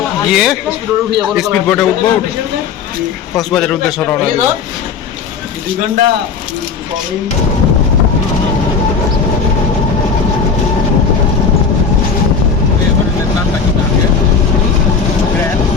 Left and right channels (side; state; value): right; quieter; 5.8 dB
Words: গিয়ে স্পিড বোটে উঠবো, কক্সবাজারের উদ্দেশ্যে রওনা দেব।